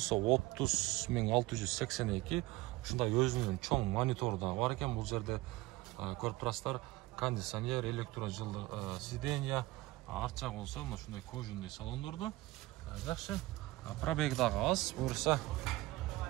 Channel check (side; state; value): left; quieter; 19.4 dB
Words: 30.682. Ушундай өзүнүн чоң монитору да бар экен. Бул жерде көрүп турасыздар, кондиционер, электрожылдык сиденья, арт жак болсо мына ушундай кожаный салондордо. Жакшы. Пробег дагы аз, буюрса